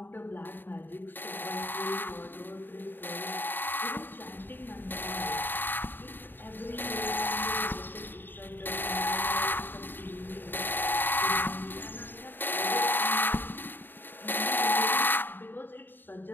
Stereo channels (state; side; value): late; right; 0.094 ms